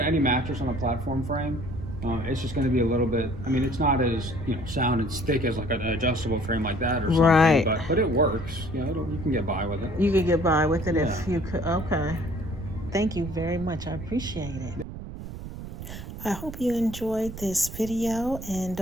any mattress on a platform frame. It's just going to be a little bit, it's not as, sound and thick as like an adjustable frame like that or something. Right. But it works. You can get by with it. You could get by with it if you could. Okay. Thank you very much. I appreciate it. I hope you enjoyed this video, and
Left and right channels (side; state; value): right; noise; rumble, 11 dB below the sound